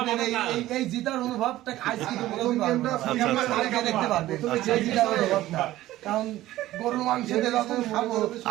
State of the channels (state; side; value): quieter; left; 15.4 dB